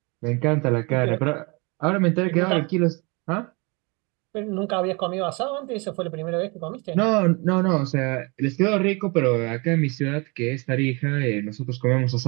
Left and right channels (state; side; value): quieter; left; 28.9 dB